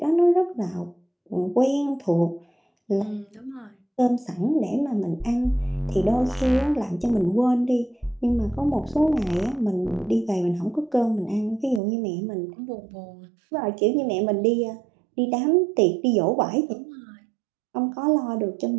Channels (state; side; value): drops out; left; at 11.8 s